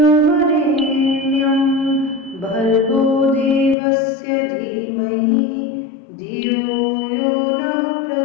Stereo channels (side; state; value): right; drops out; at 3.8 s